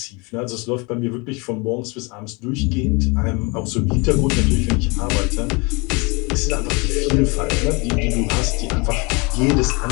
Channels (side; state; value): right; quieter; 28.5 dB